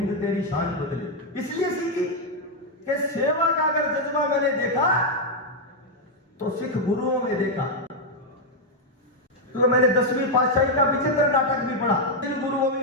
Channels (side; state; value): both; normal; correlation 0.00